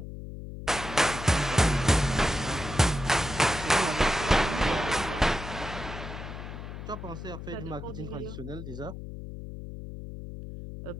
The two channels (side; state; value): left; noise; hum, 10 dB below the sound